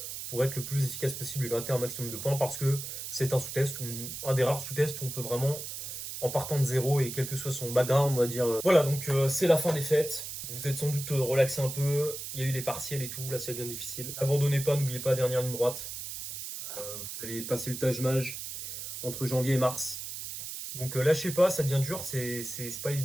pour être le plus efficace possible et gratter un maximum de points, parce que c'est un sous-test, un des rares sous-tests où on peut vraiment en partant de zéro et quel que soit son background, on va dire. Voilà, donc c'est la fin des fêtes. Vous êtes sans doute relaxé un peu. Il y a eu les partiels et tout, là ça devient difficile. Abandonnez pas, n'oubliez pas, dernière ligne droite. Vous allez passer le Taj Mahal entre janvier et mars. Donc lâchez pas, ça devient dur, c'est pas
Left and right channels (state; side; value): noise; right; hiss, 7 dB below the sound